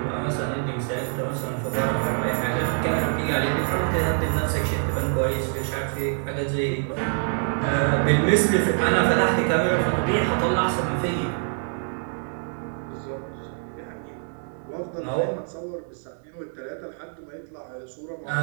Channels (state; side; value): silent; left; 57 dB below the other